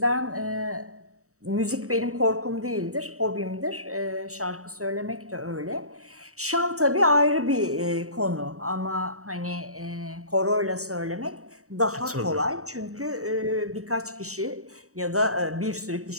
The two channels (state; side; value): late; left; 0.65 ms